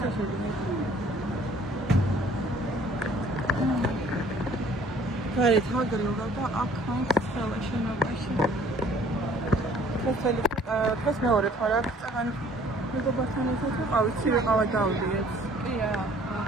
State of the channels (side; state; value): both; normal; correlation 0.56